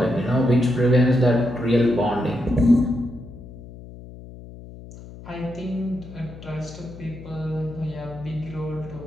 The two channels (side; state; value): left; noise; hum, 16 dB below the sound